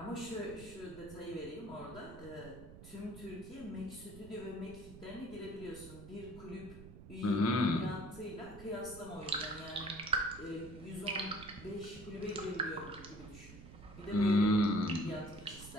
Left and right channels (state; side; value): noise; right; rumble, 15 dB below the sound